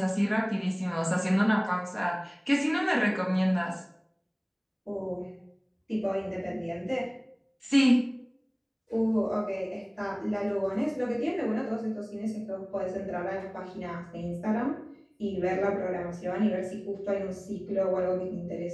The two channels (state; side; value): identical; both; correlation 1.00